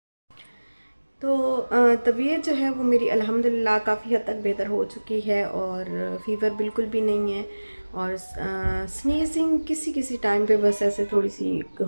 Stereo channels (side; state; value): both; inverted; correlation -1.00